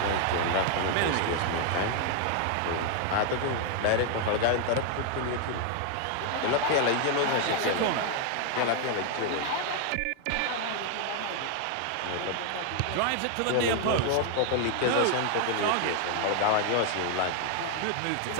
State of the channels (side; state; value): both; different; correlation 0.00